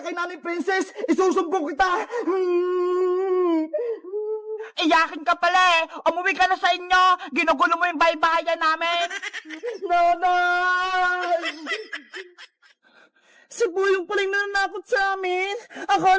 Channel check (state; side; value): identical; both; correlation 1.00